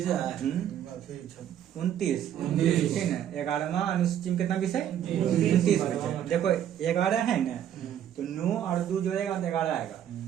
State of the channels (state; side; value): quieter; left; 10.2 dB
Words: 29, ठीक है। 11वां अनुसूची में कितना विषय? 29 विषय। देखो 11 है ना, तो 9 और 2 जोड़ेगा तो 11 आएगा।